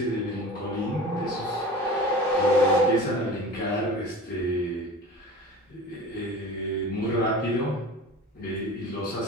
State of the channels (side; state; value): both; normal; correlation 0.37